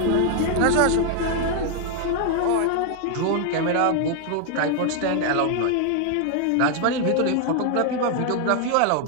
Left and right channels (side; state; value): both; different; correlation 0.00